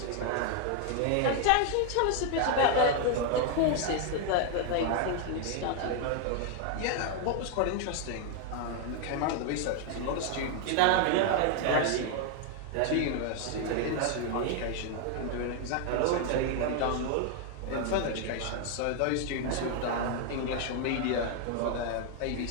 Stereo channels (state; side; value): different; both; correlation 0.00